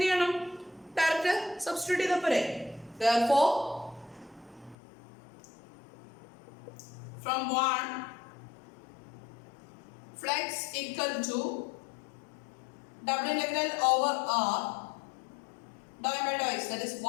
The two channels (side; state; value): right; drops out; at 4.8 s